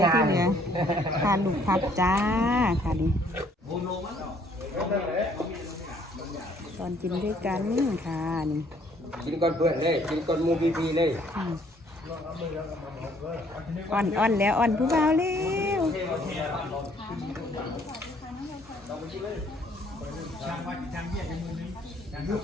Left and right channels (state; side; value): normal; both; correlation 0.63